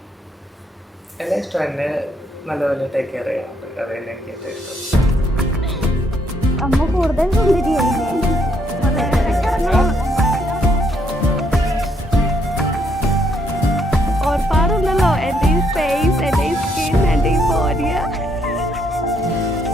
എല്ലാം ഇഷ്ടം. എന്നെ നല്ലപോലെ ടേക്ക് കെയർ ചെയ്യാറുണ്ട്. അത് തന്നെ എനിക്ക് ഏറ്റവും ഇഷ്ടം. അമ്മ കൂടുതൽ സുന്ദരിയല്ലേ? ഓർപ്പാടുണ്ടല്ലോ എൻ്റെ ഈ ഫേസ്, എൻ്റെ ഈ സ്കിൻ, എൻ്റെ ഈ ബോഡിയ.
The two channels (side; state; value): both; normal; correlation 0.72